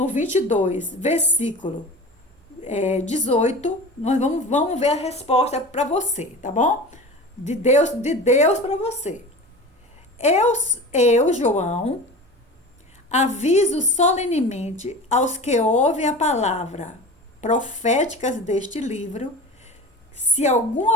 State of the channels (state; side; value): normal; both; correlation 0.34